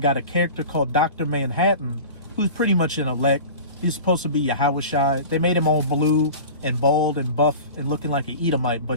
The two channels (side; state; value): both; inverted; correlation -0.36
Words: a character called Dr. Manhattan, who's pretty much an elect. He's supposed to be Yahushai. They made him all blue and bald and buff and looking like an Edomite,